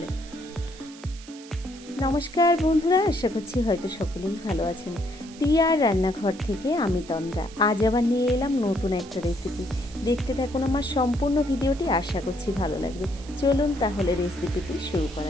নমস্কার বন্ধুরা, আশা করছি হয়তো সকলেই ভালো আছেন। টিয়ার রান্নাঘর থেকে আমি তন্দ্রা। আজ আবার নিয়ে এলাম নতুন একটা রেসিপি। দেখতে থাকুন আমার সম্পূর্ণ ভিডিওটি, আশা করছি ভালো লাগবে। চলুন তাহলে রেসিপিটি শুরু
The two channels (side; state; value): right; noise; hiss, 19 dB below the sound